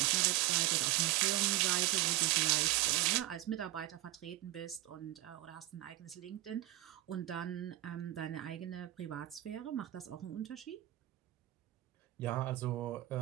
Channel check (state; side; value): quieter; left; 16.2 dB